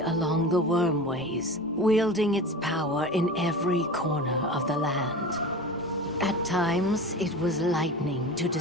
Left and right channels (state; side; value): normal; both; correlation 0.32